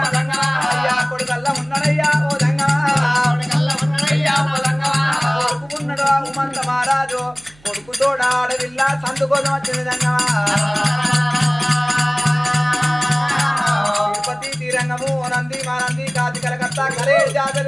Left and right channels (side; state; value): right; noise; hum, 28 dB below the sound